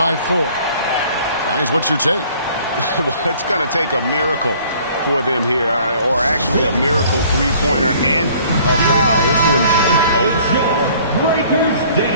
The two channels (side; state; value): both; inverted; correlation -0.55